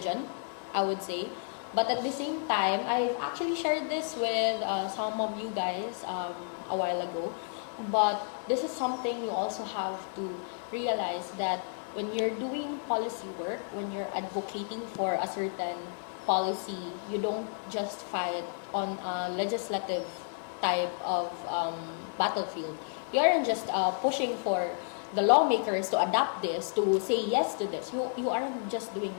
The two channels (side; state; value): right; silent; 57 dB below the other